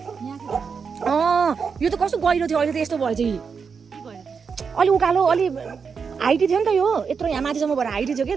यो त कस्तो गहिरो थियो अहिले त यस्तो भएछ कि अलि उकालो अलि हाइटी थियो नि त यो यत्रो यहाँ माथिसम्म भएर हाइटी थियो कि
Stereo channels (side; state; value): left; quieter; 5.8 dB